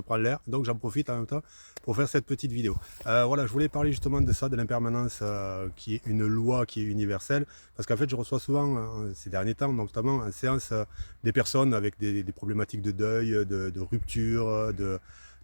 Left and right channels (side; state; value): both; inverted; correlation -1.00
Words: l'air, donc j'en profite en même temps pour faire cette petite vidéo. Voilà, je voulais parler justement de ça, de l'impermanence qui est une loi qui est universelle, parce qu'en fait je reçois souvent ces derniers temps, notamment en séance, des personnes avec des problématiques de deuil, de rupture,